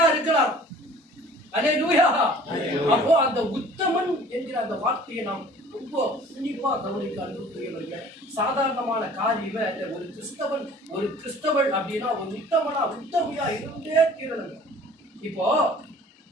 இருக்கலாம். அல்லேலூயா. அப்போ அந்த உத்தமன் என்கிற அந்த வார்த்தையை நாம் ரொம்ப உன்னிப்பா கவனிக்க அனுப்புகிறவர்கள். சாதாரணமான காரியமே அல்ல. ஒரு கிறிஸ்தவன் அப்படின்னா ஒரு உத்தமையா இருந்தே தீரணும். இப்போ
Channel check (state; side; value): normal; both; correlation 0.49